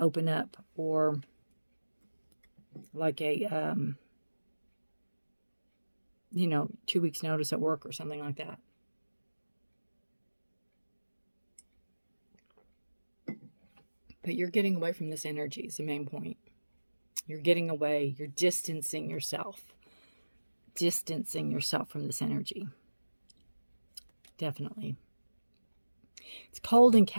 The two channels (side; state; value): both; inverted; correlation -1.00